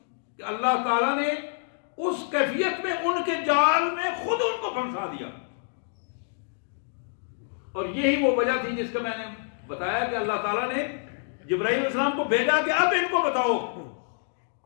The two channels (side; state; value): right; silent; digital silence